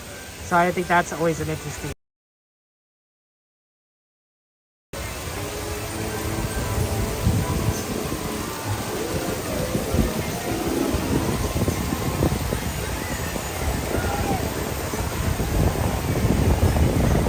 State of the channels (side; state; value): both; identical; correlation 1.00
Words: So I think that's always an interesting.